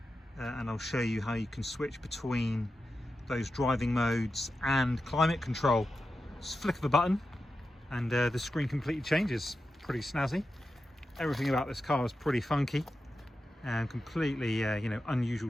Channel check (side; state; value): both; normal; correlation 0.91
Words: And I'll show you how you can switch between those driving modes and climate control. Just flick of a button and the screen completely changes. Pretty snazzy. Everything about this car is pretty funky and completely you know, unusual